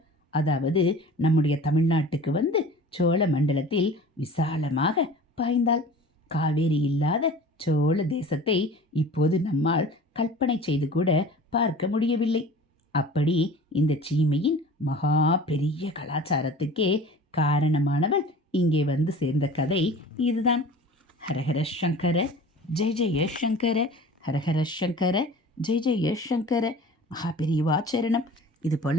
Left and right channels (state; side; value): normal; both; correlation 0.41